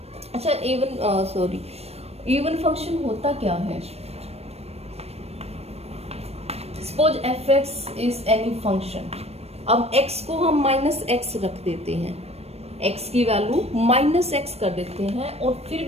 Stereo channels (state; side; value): late; left; 0.30 ms